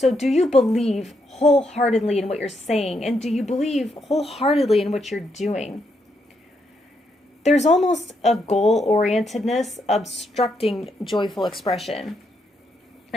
do you believe wholeheartedly in what you're saying? And do you believe wholeheartedly in what you're doing? There's almost a goal-orientedness obstructing joyful expression.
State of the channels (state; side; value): normal; both; correlation 0.78